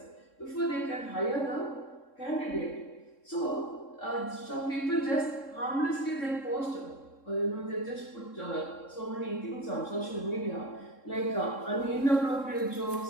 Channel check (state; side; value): late; right; 3.7 ms